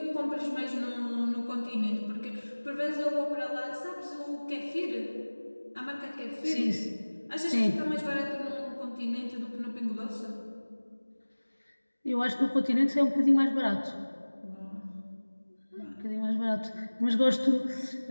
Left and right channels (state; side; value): inverted; both; correlation -1.00